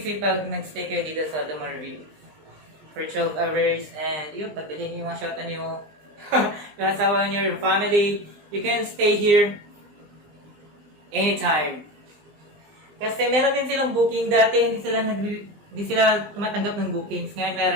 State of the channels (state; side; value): late; left; 20 ms